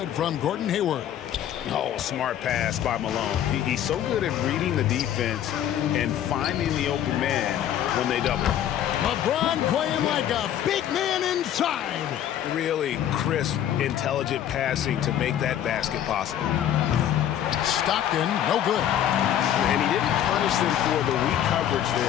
from Gordon Hayward. Oh, smart pass by Malone. He's so good at reading the defense and finding the open man when they double. LeBron playing like a big man inside. Really crisp, intelligent passing to make that basket possible. Stockton, no good. And he didn't punish them for the weak coverage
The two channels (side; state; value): right; quieter; 10.8 dB